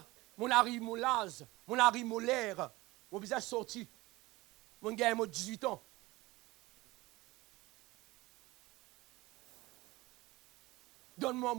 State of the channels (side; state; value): left; quieter; 20.5 dB